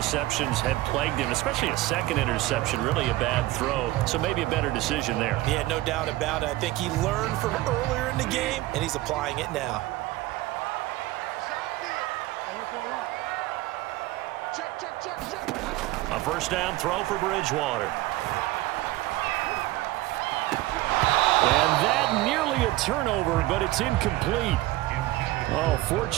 had plagued him, especially a second interception, really a bad throw. So maybe a better decision there. Yeah, no doubt about it. I think he learned from earlier in the game, and he's applying it now. A first down throw for Bridgewater. And that nearly a turnover, but it's incomplete. Oh,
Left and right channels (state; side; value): quieter; left; 17.9 dB